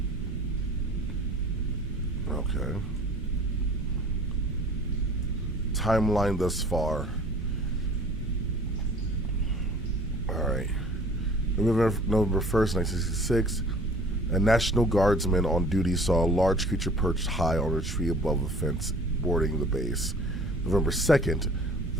Okay. Timeline thus far. Alright. November 1st, 1966, a National Guardsman on duty saw a large creature perched high on a tree above a fence bordering the base. November 2nd,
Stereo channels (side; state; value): both; normal; correlation 0.49